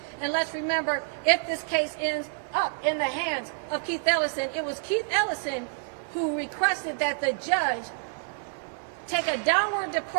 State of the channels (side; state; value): left; silent; digital silence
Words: And let's remember, if this case ends up in the hands of Keith Ellison, it was Keith Ellison who requested that the judge take a downward